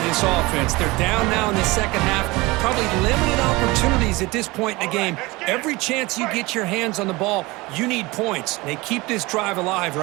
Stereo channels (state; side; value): quieter; left; 22.5 dB